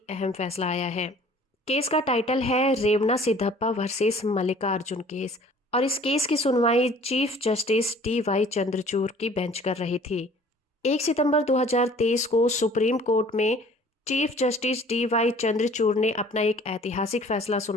अहम फैसला आया है। केस का टाइटल है रेवना सिद्धप्पा वर्सेस मल्लिकार्जुन केस, और इस केस की सुनवाई चीफ जस्टिस डी.वाई. चंद्रचूड़ की बेंच कर रही थी। 1 सितंबर 2023 को सुप्रीम कोर्ट में चीफ जस्टिस डी.वाई. चंद्रचूड़ ने अपना एक ऐतिहासिक फैसला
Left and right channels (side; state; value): both; normal; correlation 0.52